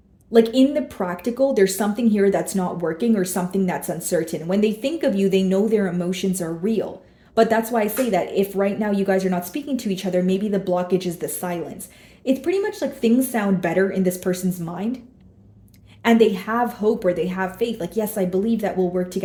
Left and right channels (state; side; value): identical; both; correlation 1.00